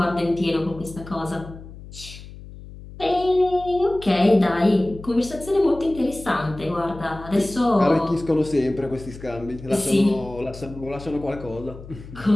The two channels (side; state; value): left; noise; hum, 16 dB below the sound